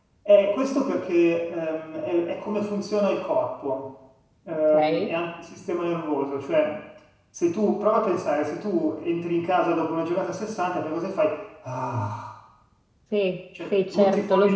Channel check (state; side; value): identical; both; correlation 1.00